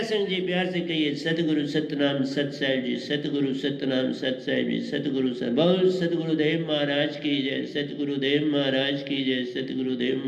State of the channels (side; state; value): both; identical; correlation 1.00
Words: जी, प्यार से कहिए सतगुरु सतनाम सत साहिब जी, सतगुरु सतनाम सत साहिब जी, सतगुरु बहुत सतगुरुदेव महाराज की जय, सतगुरुदेव महाराज की जय, सतगुरुदेव